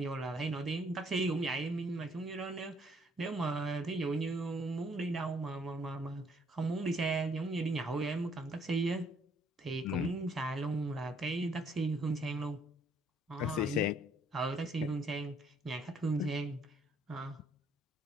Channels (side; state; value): both; normal; correlation 0.66